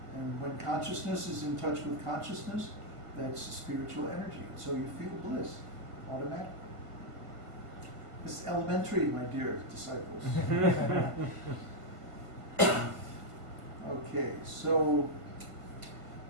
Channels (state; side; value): late; left; 1.5 ms